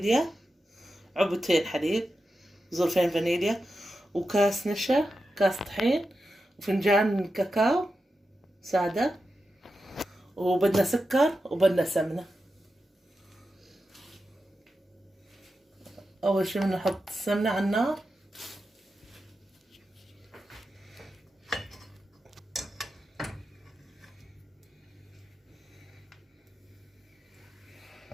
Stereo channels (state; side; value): normal; both; correlation 0.90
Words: علبتين حليب، ظرفين فانيليا، وكاس نشا، كاس طحين، وفنجان كاكاو سادة، وبدنا سكر وبدنا سمنة. أول شي بدنا نحط السمنة على النار،